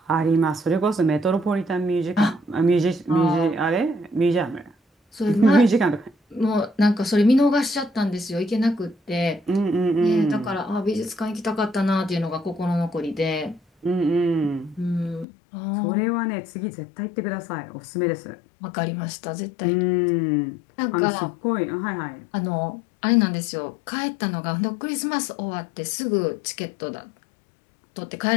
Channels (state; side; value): drops out; right; at 15.2 s